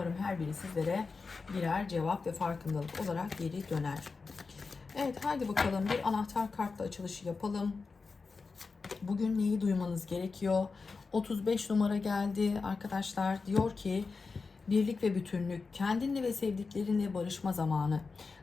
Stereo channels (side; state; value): right; quieter; 4.4 dB